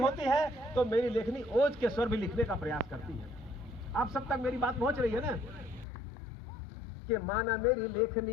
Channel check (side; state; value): right; drops out; at 5.9 s